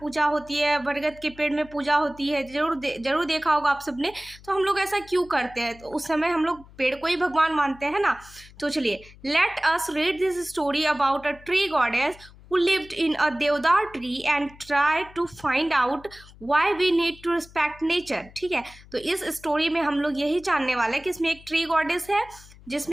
होती है, बरगद के पेड़ में पूजा होती है, जरूर देखा होगा आप सबने। तो हम लोग ऐसा क्यों करते हैं, तो उस समय हम लोग पेड़ को ही भगवान मानते हैं ना। तो चलिए, let us read this story about a tree goddess who lived in a deodar tree and try to find out why we need to respect nature। ठीक है, तो इस स्टोरी में हम लोग यही जानने वाले हैं कि इसमें एक ट्री गॉडेस है,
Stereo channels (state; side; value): noise; left; hum, 22 dB below the sound